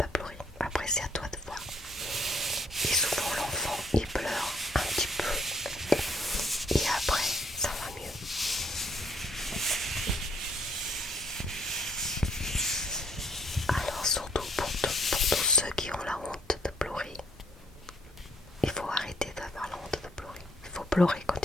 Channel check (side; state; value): both; normal; correlation 0.66